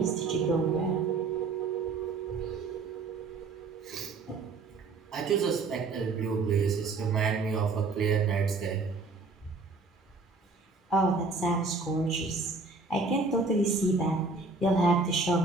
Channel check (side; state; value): left; quieter; 3.8 dB